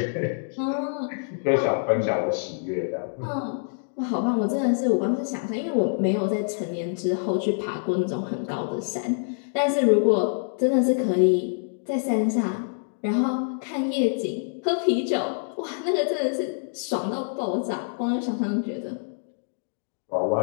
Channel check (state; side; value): silent; right; digital silence